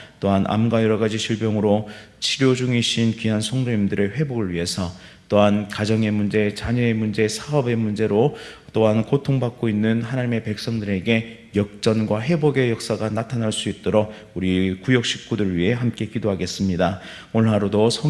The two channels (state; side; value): identical; both; correlation 1.00